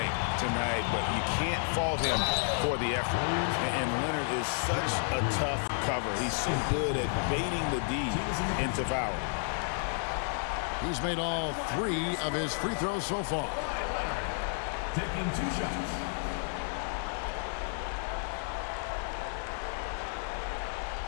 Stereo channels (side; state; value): right; silent; 57 dB below the other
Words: tonight, but you can't fault him for the effort. And Leonard is such a tough cover. He's so good at baiting the D into foul. He's made all 3 of his free throws so far. Taking 2 shots.